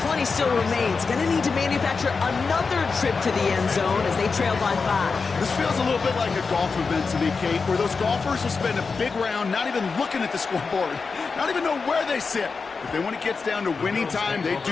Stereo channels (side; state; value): right; quieter; 4.7 dB